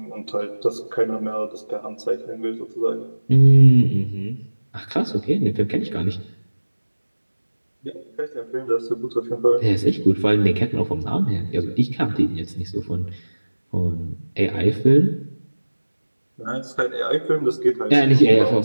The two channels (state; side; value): inverted; both; correlation -1.00